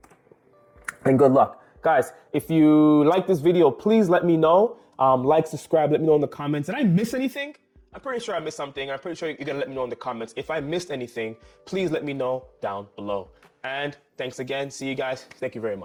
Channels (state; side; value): identical; both; correlation 1.00